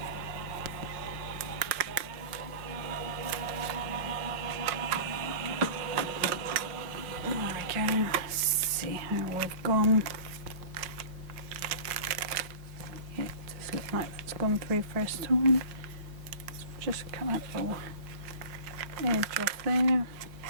Let's see how we've gone. Yeah, it does look like that's gone through first time. Let's just cut that little edge off there.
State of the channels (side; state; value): left; late; 5.5 ms